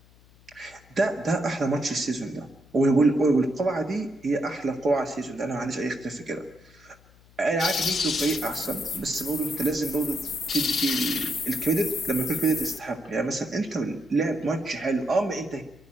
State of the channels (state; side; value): noise; left; hum, 27 dB below the sound